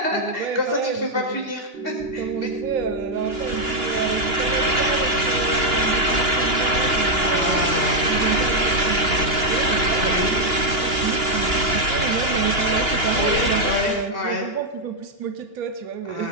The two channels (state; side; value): late; left; 2.9 ms